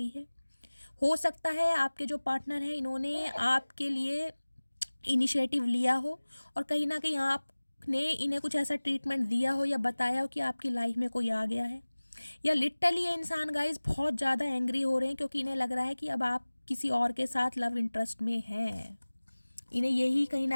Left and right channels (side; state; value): both; inverted; correlation -1.00